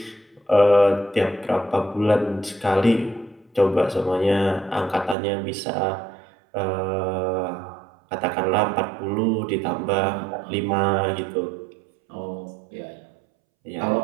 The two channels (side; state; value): left; drops out; at 5.2 s